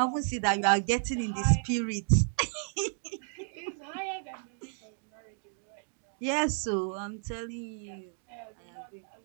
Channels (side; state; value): left; silent; 56 dB below the other